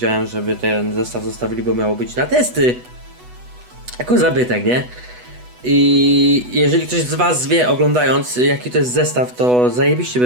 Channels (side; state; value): left; late; 8.1 ms